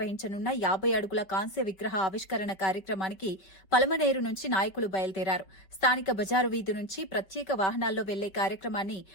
50 అడుగుల కాంస్య విగ్రహ ఆవిష్కరణ కార్యక్రమానికి పలమనేరు నుంచి నాయకులు బయలుదేరారు. స్థానిక బజారు వీధి నుంచి ప్రత్యేక వాహనాల్లో వెళ్లే కార్యక్రమాన్ని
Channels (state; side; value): late; right; 5.2 ms